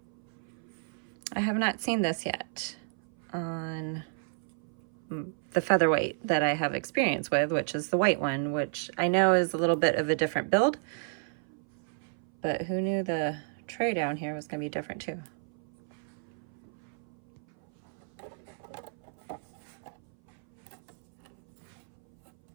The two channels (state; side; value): silent; left; 57 dB below the other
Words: I have not seen this yet on the Featherweight that I have experience with, which is the white one, which I know is a little bit of a different build, but who knew the tray down here was going to be different too.